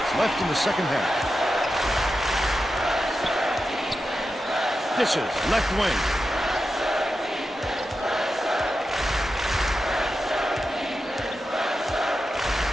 left in the second half. Dishes left wing.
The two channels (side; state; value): both; normal; correlation 0.90